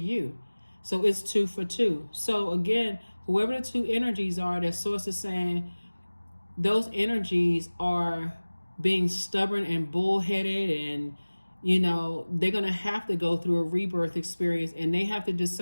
So it's 2 for 2. So again, whoever the two energies are that Source is saying, those energies are being stubborn and bullheaded, and you know, they're going to have to go through a rebirth experience, and they have to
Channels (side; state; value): both; inverted; correlation -1.00